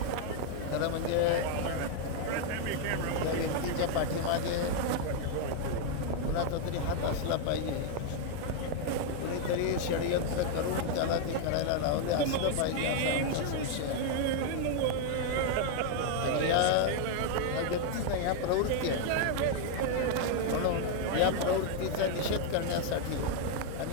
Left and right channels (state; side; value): different; both; correlation 0.00